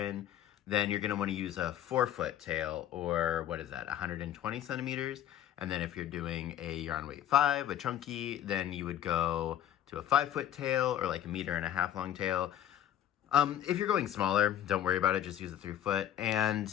then you're gonna wanna use a 4-foot tail, or what is that, 120 centimeters? And then if you're doing a yarn weight 5, a chunky, then you would go to a 5-foot tail, or like a 1.5 meter long tail. If you're going smaller, don't worry about it, just use a 3-foot.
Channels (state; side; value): quieter; right; 11.1 dB